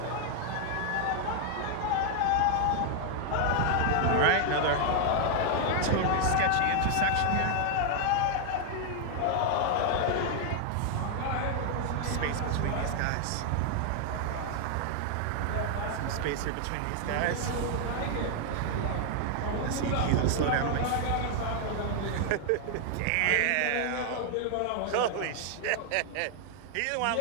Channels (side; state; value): both; different; correlation 0.00